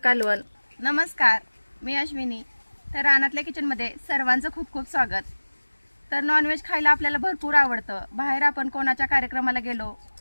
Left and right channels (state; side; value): inverted; both; correlation -1.00